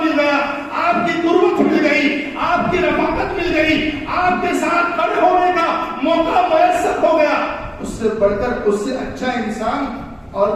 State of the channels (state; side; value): identical; both; correlation 1.00